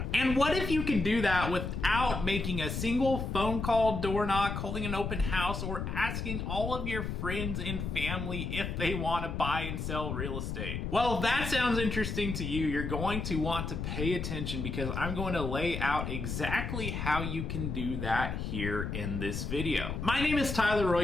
And what if you could do that without making a single phone call, door knock, holding an open house, or asking all of your friends and family if they want to buy and sell real estate? Well, if that sounds interesting to you, you're going to want to pay attention, because I'm going to lay out exactly how you can do that here in this video. My name is Tyler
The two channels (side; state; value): left; noise; rumble, 4 dB below the sound